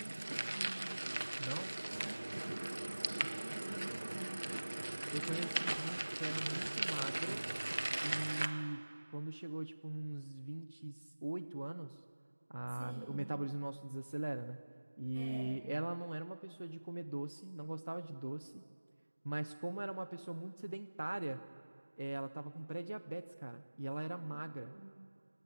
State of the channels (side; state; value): both; inverted; correlation -1.00